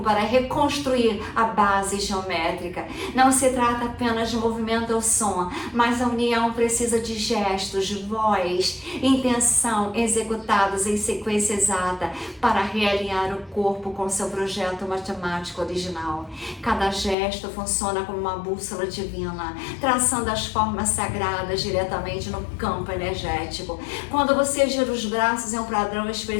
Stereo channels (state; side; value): drops out; right; at 17.2 s